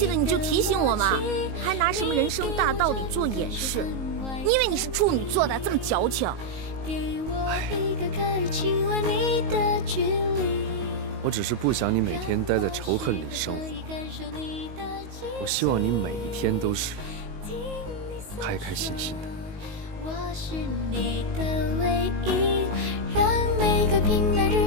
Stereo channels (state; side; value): late; left; 19 ms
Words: 了你就提醒我嘛，还拿什么人生大道理做掩饰？你以为你是处女座的，这么矫情？我只是不想你每天待在仇恨里生活。我希望你每一天都是开开心心的。我是你的唯一，让每个平淡